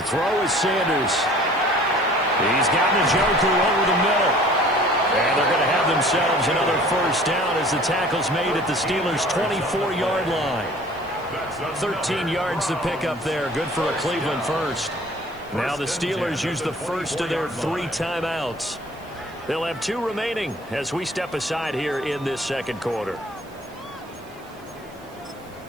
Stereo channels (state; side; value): noise; right; hiss, 27 dB below the sound